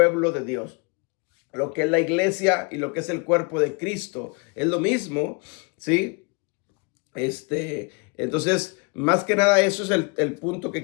de Dios. Lo que es la iglesia y lo que es el cuerpo de Cristo es lo mismo, ¿sí? Entonces, más que nada, eso es el punto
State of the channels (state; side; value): quieter; right; 31.6 dB